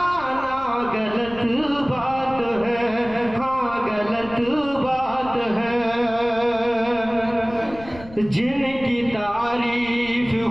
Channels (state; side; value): noise; left; rumble, 18 dB below the sound